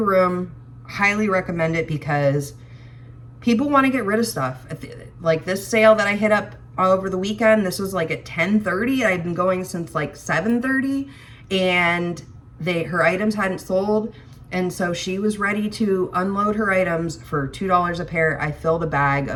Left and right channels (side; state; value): both; identical; correlation 1.00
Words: Highly recommend it because people want to get rid of stuff. Like this sale that I hit up over the weekend, this was like at 10:30. I've been going since like 7:30 and her items hadn't sold. And so she was ready to unload her items for $2 a pair. I filled a bag